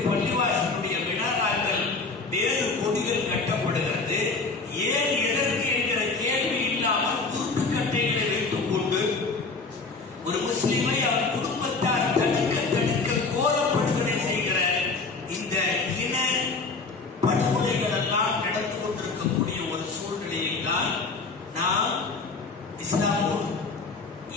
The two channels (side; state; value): right; quieter; 4.1 dB